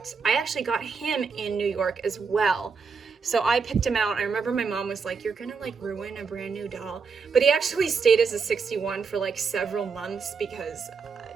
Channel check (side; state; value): left; quieter; 5.4 dB